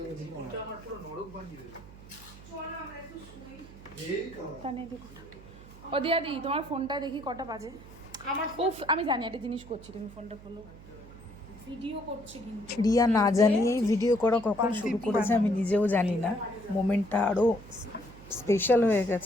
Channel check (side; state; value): right; noise; hum, 19 dB below the sound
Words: ও দিয়াদি তোমার ফোনটা দেখি কটা বাজে। উফ আমি জানি একটা জিনিস করছি, তুমি ফোনটা খোলো। ভিডিও করছি কিন্তু রিয়া না জানিয়েই ভিডিও করা কখন শুরু করেছে আমি নিজেও জানি না। মোমেন্টটা আরো স্পেশাল হয়ে